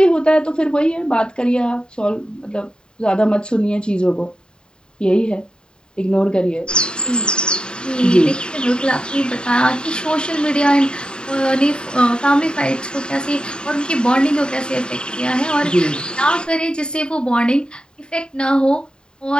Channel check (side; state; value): right; late; 0.049 ms